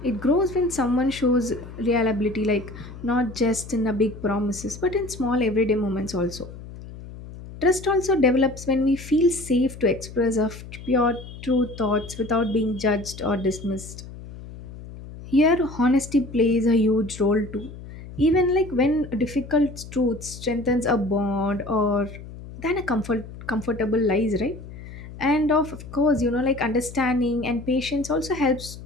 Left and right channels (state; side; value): noise; left; hum, 14 dB below the sound